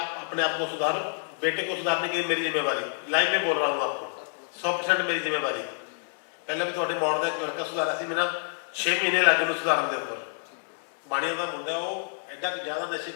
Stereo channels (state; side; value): silent; right; digital silence